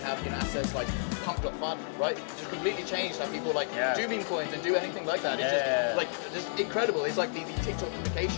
have assets like pump.fun, right? Just completely changed how people do meme coins and do anything like that. It's just incredible. It's like the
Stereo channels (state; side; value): silent; right; digital silence